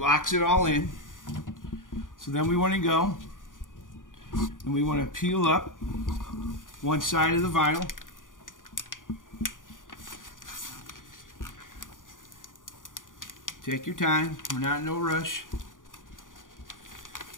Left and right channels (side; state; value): right; late; 0.89 ms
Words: it all in. So then we want to go and we want to peel up one side of the vinyl. Take your time, we're not in no rush.